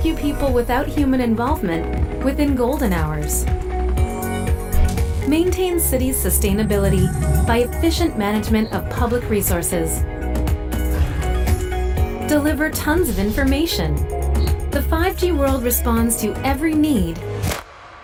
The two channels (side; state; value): both; identical; correlation 1.00